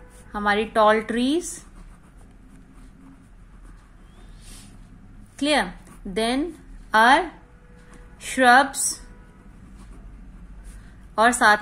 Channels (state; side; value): identical; both; correlation 1.00